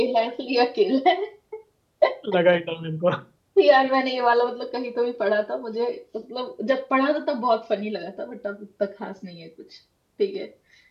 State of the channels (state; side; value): identical; both; correlation 1.00